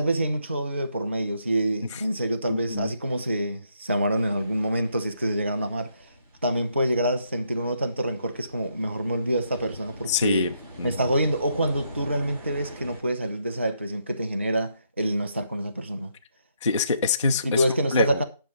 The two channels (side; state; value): both; inverted; correlation -0.75